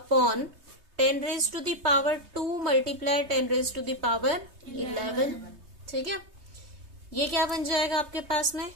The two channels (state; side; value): late; left; 3.2 ms